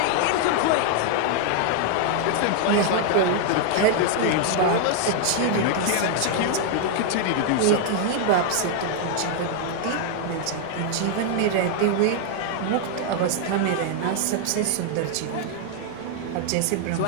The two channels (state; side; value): different; both; correlation 0.00